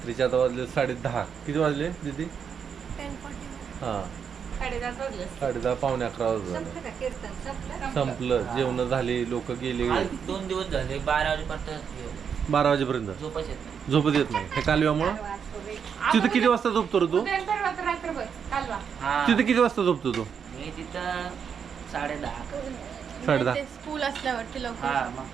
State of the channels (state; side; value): quieter; left; 7.1 dB